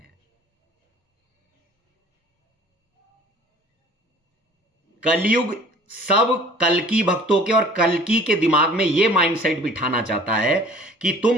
कलयुग सब कल्कि भक्तों के और कल्कि के दिमाग में यह माइंडसेट बिठाना चाहता है कि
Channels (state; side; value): normal; both; correlation 0.50